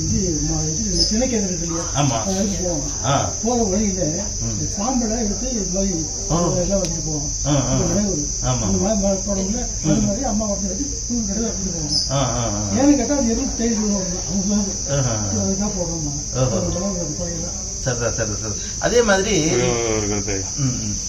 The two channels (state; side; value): identical; both; correlation 1.00